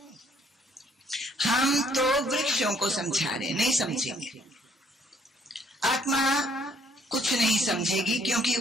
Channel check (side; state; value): both; normal; correlation 0.65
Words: हम तो वृक्षों को समझा रहे हैं, नहीं समझेंगे। आत्मा कुछ नहीं समझेगी, क्योंकि